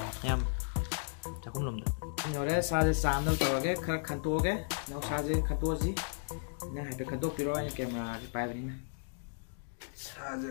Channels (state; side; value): silent; right; digital silence